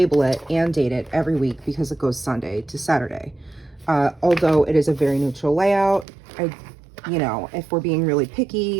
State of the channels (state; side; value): drops out; left; at 6.1 s